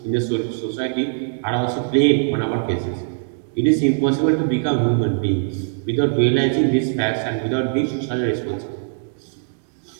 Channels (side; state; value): left; silent; digital silence